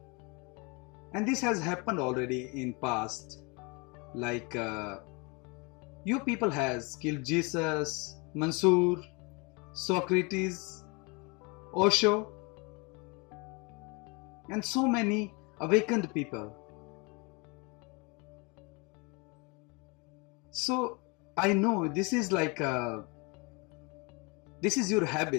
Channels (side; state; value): right; quieter; 29.5 dB